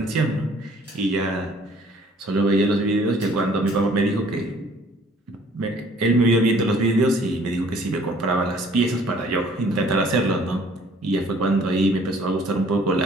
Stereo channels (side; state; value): both; normal; correlation 0.57